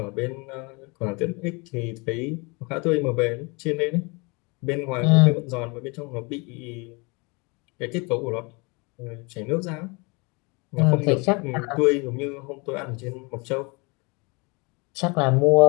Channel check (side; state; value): right; quieter; 29.0 dB